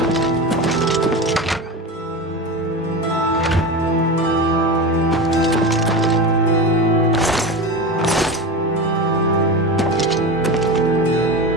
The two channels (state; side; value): normal; both; correlation 0.24